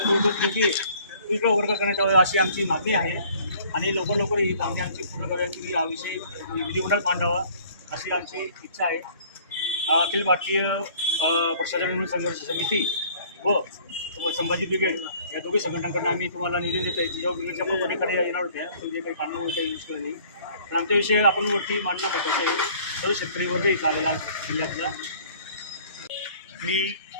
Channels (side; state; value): both; inverted; correlation -0.54